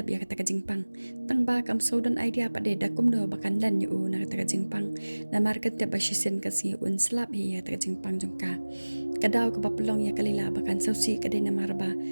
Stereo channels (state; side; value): inverted; both; correlation -1.00